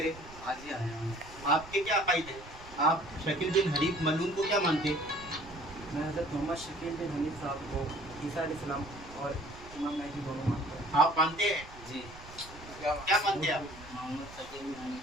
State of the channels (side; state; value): right; noise; rumble, 18 dB below the sound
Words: आज ही आया हूँ। आपके क्या अकायद है? आप शकील बिन हनीफ मलून को क्या मानते हैं? मैं हज़रत मोहम्मद शकील बिन हनीफ साहब को ईसा अलैहिस्सलाम और इमाम महदी दोनों मानता हूँ। आप मानते हैं? जी। क्या मानते हैं आप? मोहम्मद शकील बिन